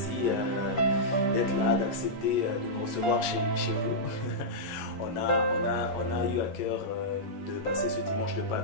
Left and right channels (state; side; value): late; right; 11 ms